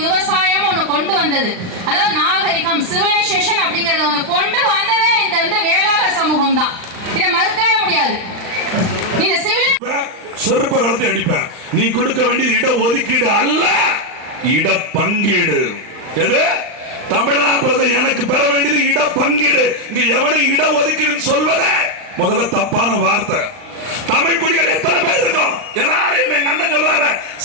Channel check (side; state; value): left; late; 39 ms